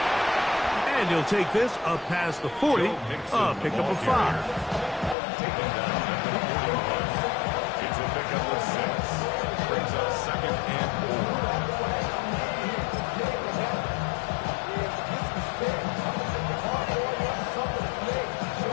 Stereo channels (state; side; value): drops out; right; at 5.2 s